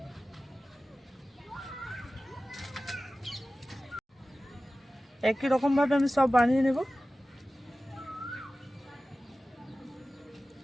একই রকমভাবে আমি সব বানিয়ে নেব।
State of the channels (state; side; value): normal; both; correlation 0.96